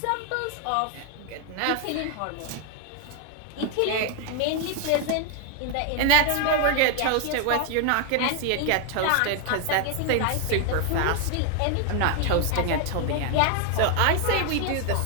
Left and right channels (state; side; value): different; both; correlation 0.01